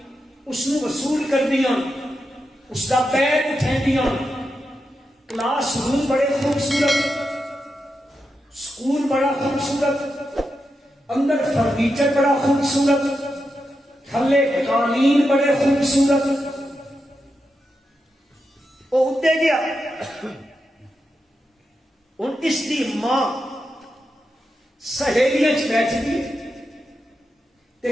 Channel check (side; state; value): both; normal; correlation 0.87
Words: اس نو وصول کر دیا، اس کا بیگ اٹھا دیا، کلاس روم بڑے خوبصورت، سکول بڑا خوبصورت، اندر فرنیچر بڑا خوبصورت، تھلے قالین بڑے خوبصورت، وہ ادے گیا، ان اس کی ماں سہیلیاں بیٹھ گئی تے